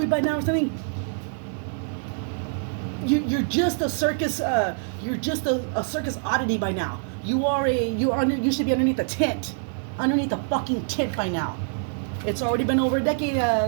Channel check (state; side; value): silent; left; 61 dB below the other